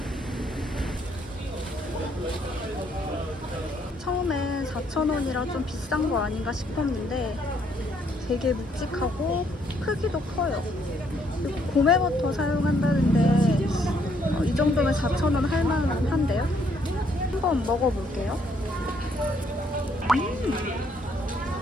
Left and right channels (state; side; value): normal; both; correlation 0.69